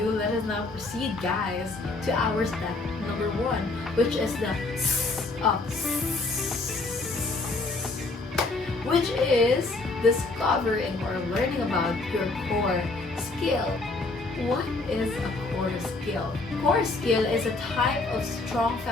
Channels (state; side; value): quieter; right; 3.4 dB